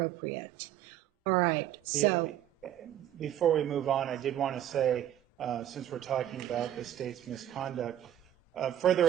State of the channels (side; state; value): left; quieter; 11.3 dB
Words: All right. So before we move on, I did want to say, since we're talking about the state's misconduct, further